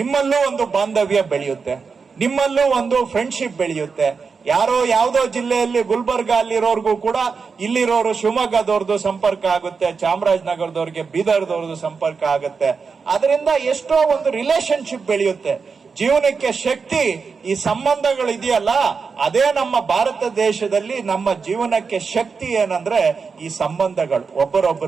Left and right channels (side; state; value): left; quieter; 5.2 dB